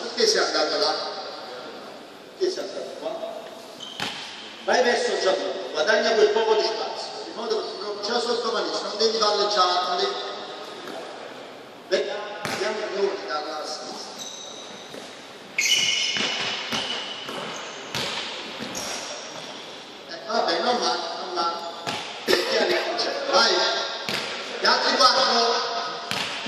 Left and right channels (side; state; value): both; identical; correlation 1.00